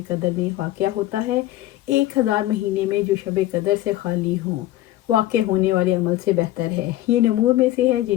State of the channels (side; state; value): right; quieter; 15.0 dB